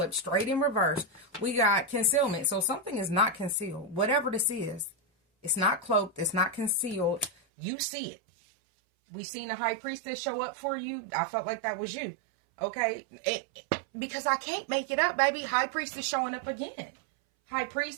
straight in reverse. We got concealment. So something is not concealed. Whatever this is, it's not cloaked. It's not concealed. You see it. We seen the high priestess show up for you. I felt like that was you. Okay. Because I can't make it up, baby. High priestess showing up again. High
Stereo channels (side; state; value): left; drops out; at 7.3 s